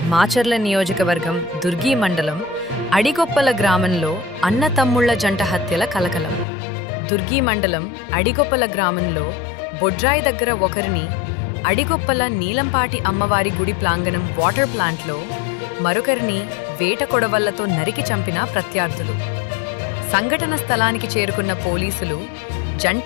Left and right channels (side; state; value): right; drops out; at 6.5 s